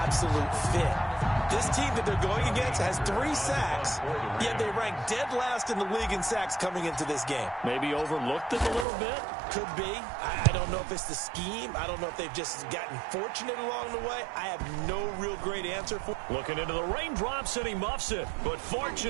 fit. This team that they're going against has 3 sacks, yet they rank dead last in the league in sacks coming into this game. Maybe overlooked it a little bit? Could be. I don't know if it's the scheme. I don't know if they've just gotten fortunate along the way. I have no real great answer for it. Looking into the raindrops and he muffs it. But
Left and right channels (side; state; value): left; drops out; at 8.8 s